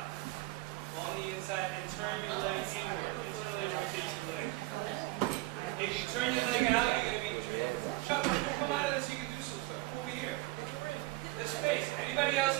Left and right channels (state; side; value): quieter; left; 19.9 dB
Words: On the inside, and turn your leg inward. If you turn your leg out, you're going to be... Chuck, come out of this, you can do some stuff. Come over here. There's space. Anybody else